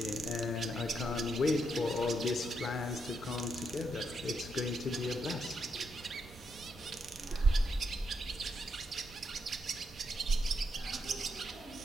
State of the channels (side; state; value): both; normal; correlation 0.80